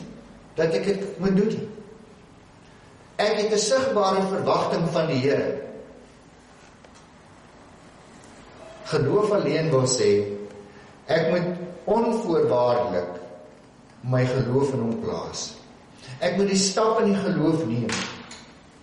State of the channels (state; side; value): identical; both; correlation 1.00